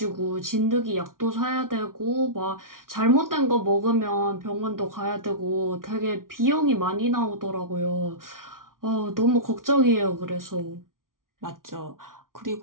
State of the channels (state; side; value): late; left; 0.90 ms